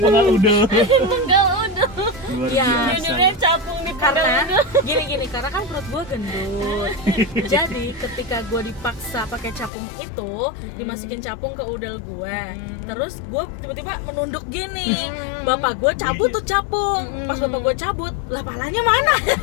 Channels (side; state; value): right; drops out; at 9.7 s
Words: udah. Enggak udah. Luar Iya. biasa. Judulnya capung di Karena udah. gini karena kan perut gue gendut. Jadi ketika gue dipaksa pakai capung itu, dimasukin capung ke udel gue, terus gue tiba-tiba menunduk gini. Bapak gue cabut tuh capung. Pas bapak gue cabut, lah palanya mana?